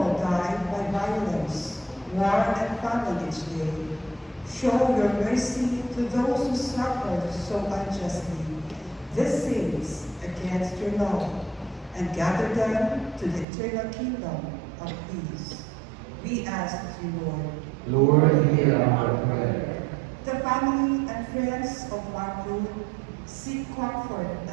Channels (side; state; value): left; drops out; at 13.5 s